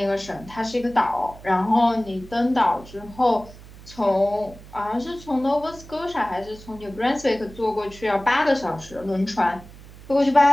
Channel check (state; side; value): noise; right; hum, 19 dB below the sound